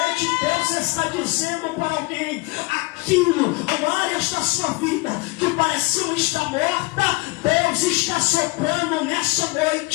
Deus está dizendo para alguém: aquilo, áreas da sua vida que pareciam estar morta, Deus está soprando nessa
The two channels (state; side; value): quieter; right; 25.2 dB